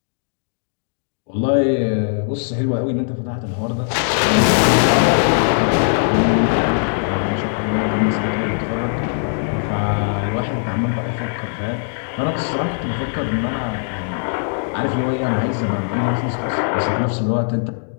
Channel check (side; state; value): right; silent; digital silence